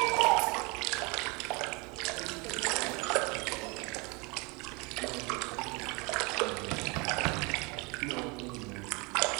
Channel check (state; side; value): quieter; left; 28.5 dB